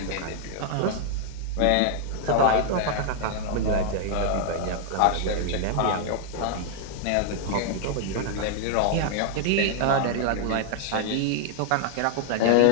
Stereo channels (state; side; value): different; both; correlation 0.00